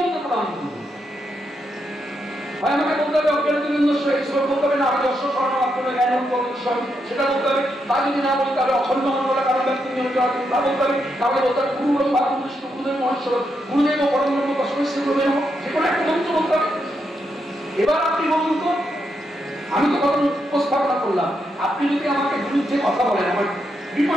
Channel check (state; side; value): normal; both; correlation 0.81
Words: প্রণাম করবো? আমাকে বলতে হবে বলতে হবে না, আমি দর্শক সেটা বলতে হবে। তা যদি না বলতে হবে অখণ্ড মন্ডল কারণ ব্যক্তি তা বলতে হবে। তাহলে বলতে হবে গুরু গুরুদেব মহেশ্বর গুরুদেব ও পরম ব্রহ্ম তস্মৈ গুরুদেব, যে কোনো একটা মন্ত্র বলতে হবে। এবার আপনি বলুন তো, আমি তো কথা উপস্থাপনা করলাম, আপনি যদি আমাকে বিরুদ্ধে কথা বলেন আমার